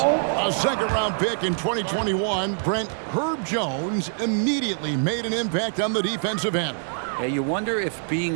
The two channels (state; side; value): silent; left; digital silence